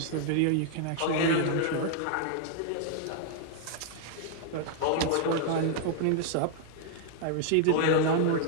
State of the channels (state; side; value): different; both; correlation 0.00